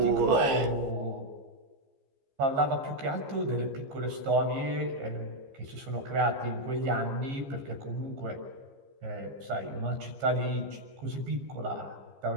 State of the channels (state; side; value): late; left; 15 ms